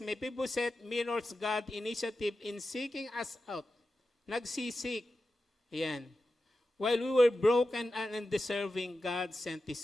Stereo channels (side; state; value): both; normal; correlation 0.92